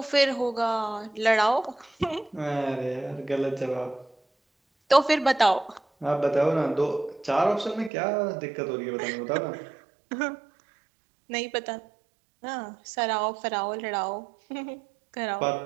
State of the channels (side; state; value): left; drops out; at 7.9 s